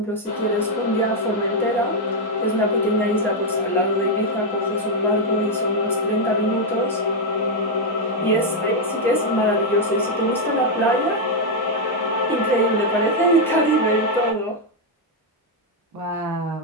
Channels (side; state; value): both; normal; correlation 0.00